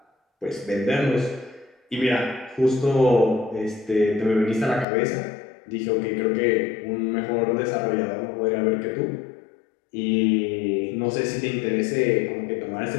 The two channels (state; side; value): drops out; right; at 4.9 s